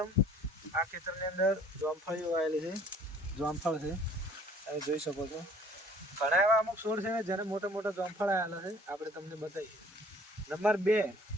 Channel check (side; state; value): both; normal; correlation 0.55